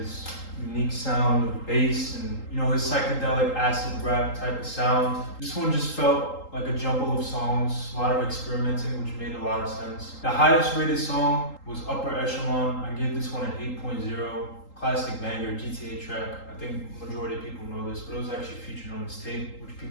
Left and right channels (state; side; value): late; right; 3.8 ms